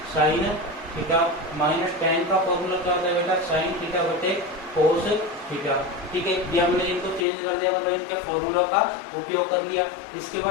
साइन थीटा माइनस टेन का फॉर्मूला क्या होता है बेटा, साइन थीटा बटे कोस थीटा। ठीक है, ये हमने इनको चेंज कर दिया, मतलब इनके फॉर्मूला का उपयोग कर दिया। इसके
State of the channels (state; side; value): drops out; right; at 7.2 s